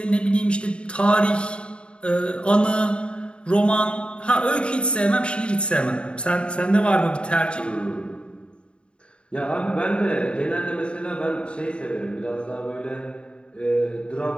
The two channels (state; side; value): late; right; 0.055 ms